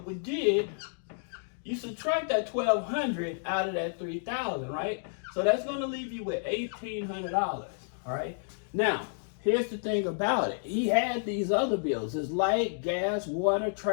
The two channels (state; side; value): silent; right; digital silence